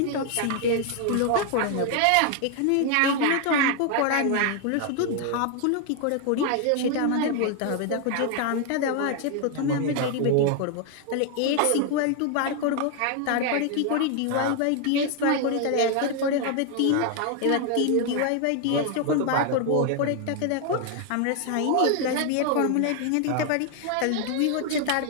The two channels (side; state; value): both; different; correlation 0.00